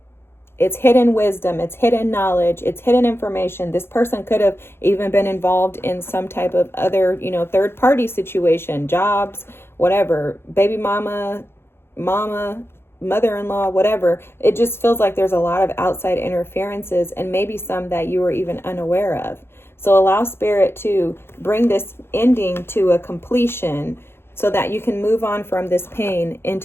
It's hidden wisdom, it's hidden knowledge, it's hidden information. This person could have even been involved in some type of other, third party situation, jobs, whatever, baby mama, mother-in-law, whatever. It just feels like there's a lot of outside interferences, and maybe some that you were even unaware of. So allow Spirit to bring this ending to a completion so that you can move on from this pain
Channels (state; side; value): late; right; 0.11 ms